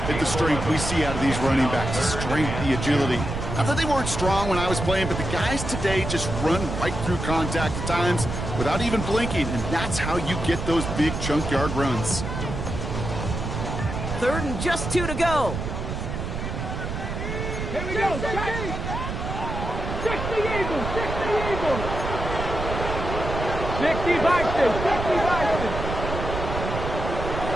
the strength we see out of these running backs. The strength, the agility. Not that they weren't strong when I was playing, but the guys today just run right through contact at times without even blinking, and that's how you get those big chunk yard runs. 3rd and just 2 to go. Here we go. 60 Eagles. 60 Eagles. 60 Bison. 60 Bison.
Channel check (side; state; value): right; noise; rumble, 5 dB below the sound